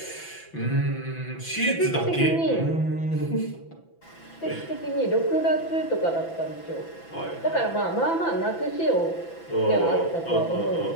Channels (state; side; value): late; right; 6.0 ms